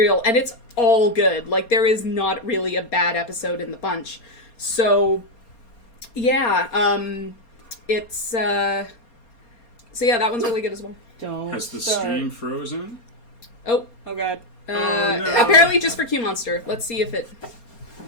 and it's all good. Like, there is not really a bad episode in the bunch. So yeah, it's so yeah, that one's really good as well. Has the stream frozen? Oh god. No. Apparently just for Q Monster. Let's see if it...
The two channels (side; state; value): right; late; 4.3 ms